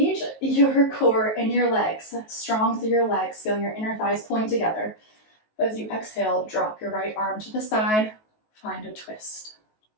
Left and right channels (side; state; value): right; late; 19 ms